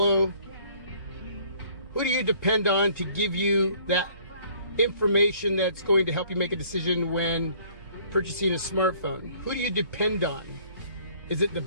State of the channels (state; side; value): inverted; both; correlation -0.58